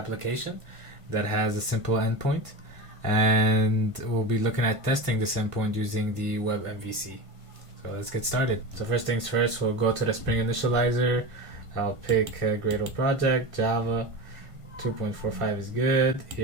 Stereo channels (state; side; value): late; left; 1.5 ms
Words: that has a simple endpoint, and we'll be looking at testing this endpoint using the web MVC. So let's get started. So first things first, we'll go to the Spring Initializer. I'll pick a Gradle project, Java. 2.45 is good.